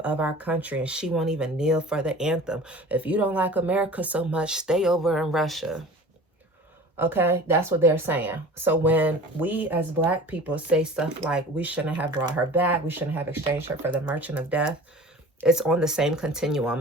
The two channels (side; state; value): both; normal; correlation 0.41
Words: of our country and she won't even kneel for the anthem? If you don't like America so much, stay over in Russia. Okay, that's what they're saying. So when we as Black people say stuff like, we shouldn't have brought her back, we shouldn't have exchanged her for the merchant of death, it's on the same